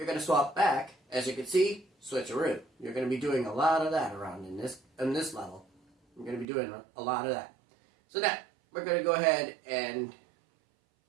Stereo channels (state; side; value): drops out; left; at 6.5 s